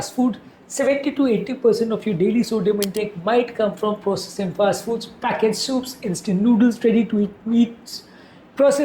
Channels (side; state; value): both; identical; correlation 1.00